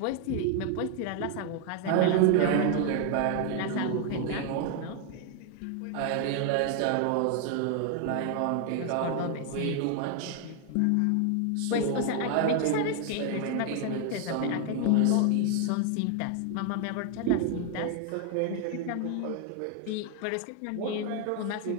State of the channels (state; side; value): different; both; correlation 0.00